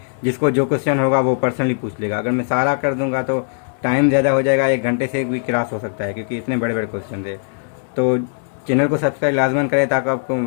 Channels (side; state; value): right; silent; 66 dB below the other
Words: जिसको जो क्वेश्चन होगा वो पर्सनली पूछ लेगा। अगर मैं सारा कर दूंगा तो टाइम ज़्यादा हो जाएगा, 1 घंटे से भी क्रॉस हो सकता है, क्योंकि इतने बड़े बड़े क्वेश्चन थे। तो चैनल को सब्सक्राइब लाजमन करें ताकि आपको